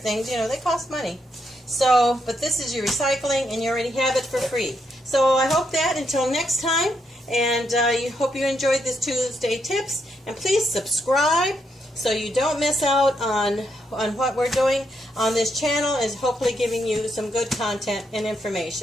they cost money. So, but this is your recycling, and you already have it for free. So I hope that until next time, and hope you enjoyed this Tuesday Tips, and please subscribe so you don't miss out on what we're doing on this channel, is hopefully giving you some good content and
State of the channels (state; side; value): normal; both; correlation 0.79